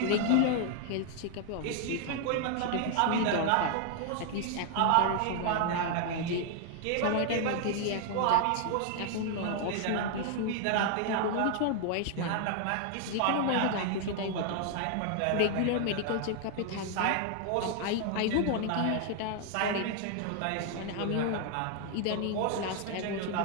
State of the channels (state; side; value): different; both; correlation 0.00